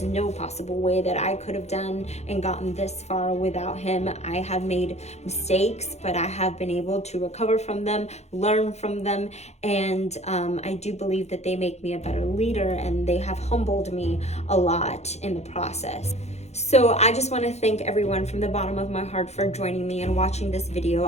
no possible way that I could have done and gotten this far without Him. I have made mistakes, but I have been able to recover from them, learn from them, and I do believe that they make me a better leader, and they have humbled me a lot in the process. So I just want to thank everyone from the bottom of my heart for joining me and watching this video.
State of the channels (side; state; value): right; late; 0.32 ms